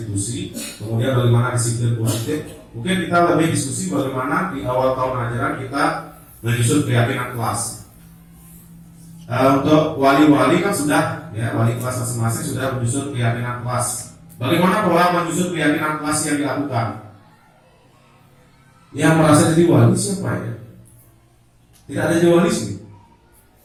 kemudian bagaimana disiplin positif. Mungkin kita lebih diskusi bagaimana di awal tahun ajaran kita menyusun keyakinan kelas. Untuk wali-wali kan sudah, ya, wali kelas masing-masing sudah menyusun keyakinan kelas. Bagaimana pola menyusun keyakinan kelas yang dilakukan? Yang merasa jadi wali siapa ya? Tidak ada jadi wali sih.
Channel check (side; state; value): both; identical; correlation 1.00